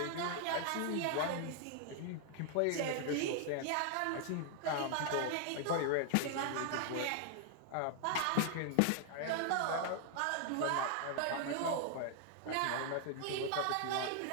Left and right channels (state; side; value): different; both; correlation 0.00